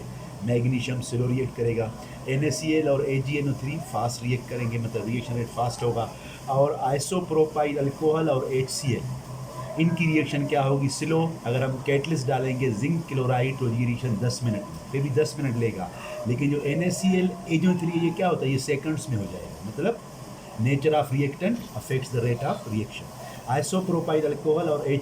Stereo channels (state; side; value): identical; both; correlation 1.00